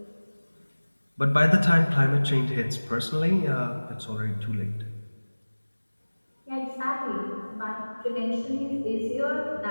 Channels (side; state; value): both; inverted; correlation -1.00